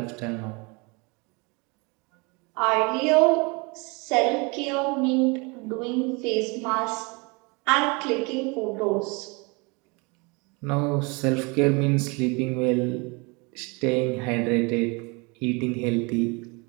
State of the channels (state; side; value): quieter; left; 29.1 dB